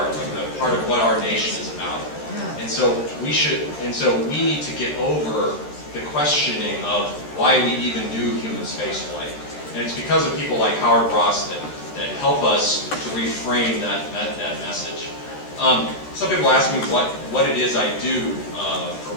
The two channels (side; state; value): right; late; 13 ms